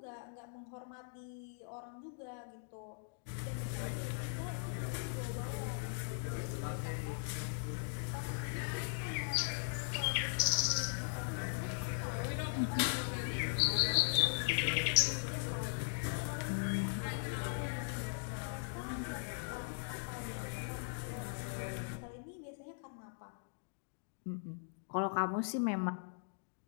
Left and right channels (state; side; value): silent; right; digital silence